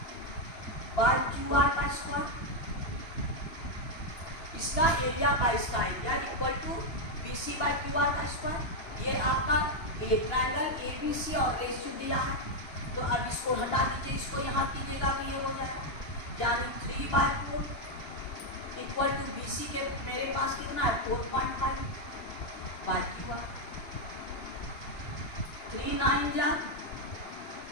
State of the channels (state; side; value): late; right; 2.9 ms